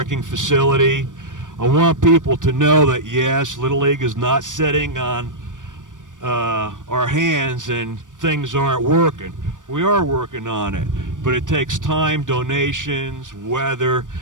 facility. I want people to know that, yes, Little League is not sitting on our hands and things aren't working. We are working on it, but it takes time, donations, weather,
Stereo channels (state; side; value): late; left; 0.87 ms